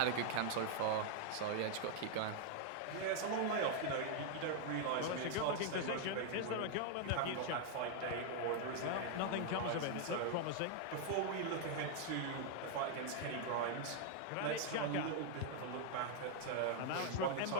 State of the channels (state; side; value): different; both; correlation 0.00